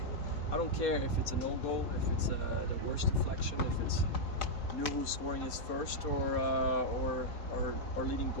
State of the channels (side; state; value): right; late; 4.3 ms